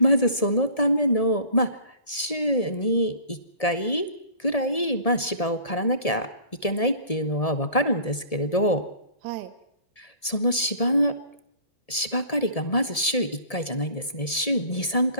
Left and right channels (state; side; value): late; right; 1.7 ms